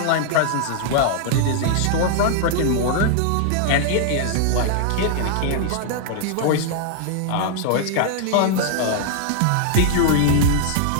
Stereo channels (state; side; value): different; both; correlation -0.01